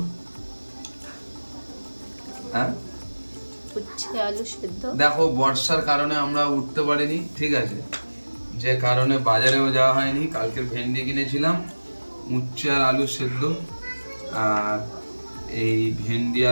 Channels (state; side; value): inverted; both; correlation -1.00